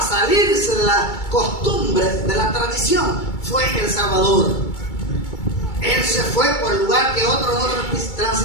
salirse de la costumbre, de la tradición, fue el Salvador. Él se fue por el lugar que otro no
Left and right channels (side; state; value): right; late; 2.3 ms